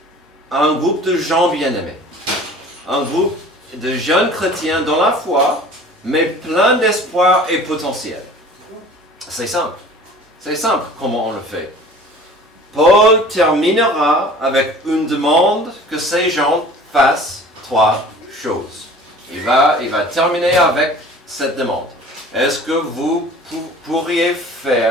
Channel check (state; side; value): normal; both; correlation 0.45